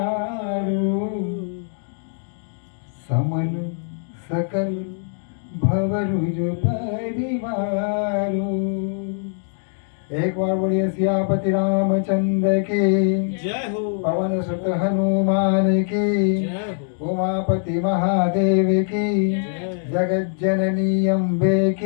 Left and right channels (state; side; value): silent; right; digital silence